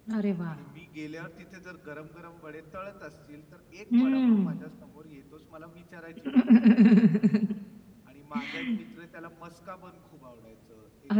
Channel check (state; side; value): identical; both; correlation 1.00